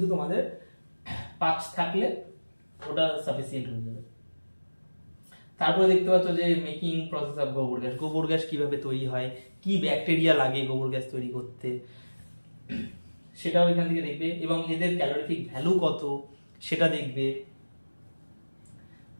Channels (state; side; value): inverted; both; correlation -1.00